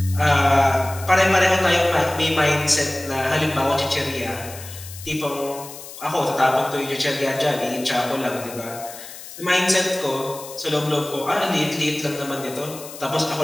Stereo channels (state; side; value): noise; left; hiss, 14 dB below the sound